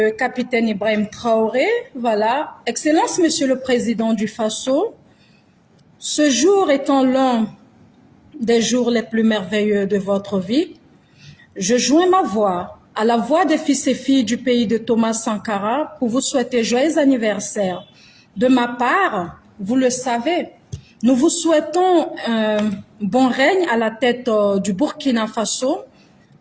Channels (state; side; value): identical; both; correlation 1.00